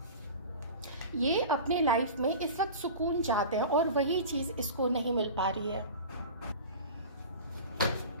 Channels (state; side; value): inverted; both; correlation -0.35